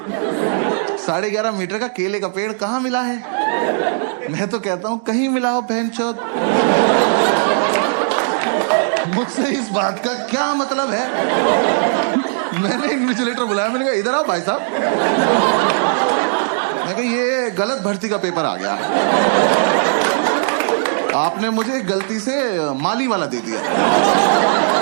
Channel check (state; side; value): silent; left; digital silence